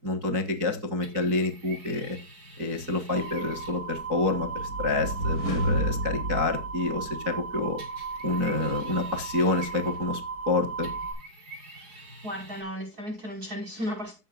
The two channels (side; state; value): left; late; 4.6 ms